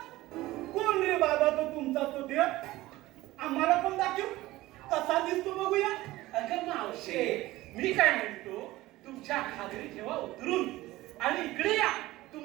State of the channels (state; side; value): quieter; left; 17.8 dB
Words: कोण रे बाबा तो तुमचा तो देव? आम्हाला पण दाखव कसा दिसतो बघूया. अगं मावशे मी काय म्हणतो तुमच्या खात्री ठेवा उतरून आणि इकडे या.